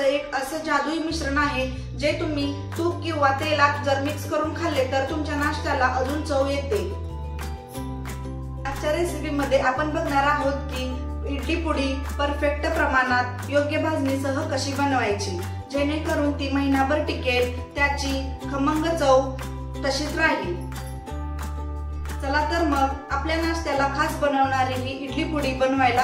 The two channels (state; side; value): identical; both; correlation 1.00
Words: एक असं जादुई मिश्रण आहे, जे तुम्ही तूप किंवा तेलात जर मिक्स करून खाल्ले तर तुमच्या नाश्त्याला अजून चव येते। आजच्या रेसिपीमध्ये आपण बघणार आहोत की इडली पुडी परफेक्ट प्रमाणात योग्य भाजणीसह कशी बनवायची, जेणेकरून ती महिनाभर टिकेल, त्याची खमंग चव तशीच राहील। चला तर मग आपल्या नाश्त्याला खास बनवणारी ही इडली पुडी